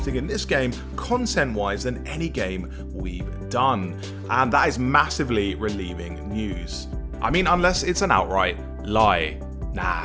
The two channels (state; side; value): identical; both; correlation 1.00